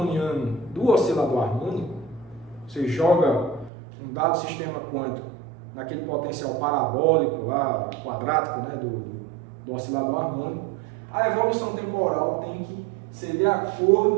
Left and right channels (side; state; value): left; drops out; at 3.7 s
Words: do oscilador harmônico, você joga um dado sistema quântico naquele potencial parabólico lá, quadrático, né, do oscilador harmônico, a evolução temporal tem que ser de